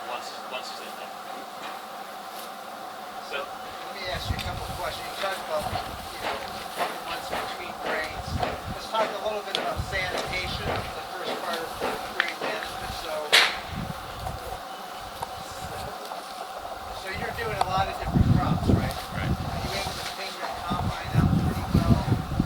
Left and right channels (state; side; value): identical; both; correlation 1.00